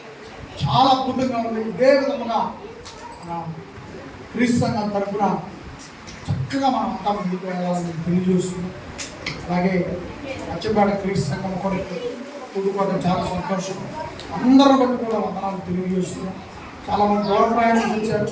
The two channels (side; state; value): both; identical; correlation 1.00